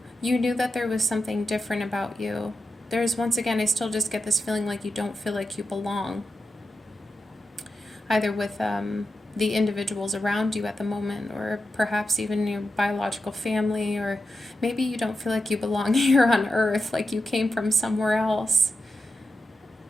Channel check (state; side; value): normal; both; correlation 0.89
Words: you knew that there was something different about you. There's, once again, I still just get this feeling like you don't feel like you belong, either with the individuals around you at the moment, or perhaps even your biological family, or maybe you don't feel like you belong here on earth, like you came from somewhere else.